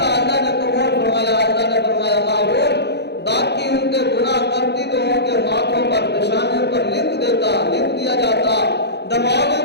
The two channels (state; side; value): late; right; 0.49 ms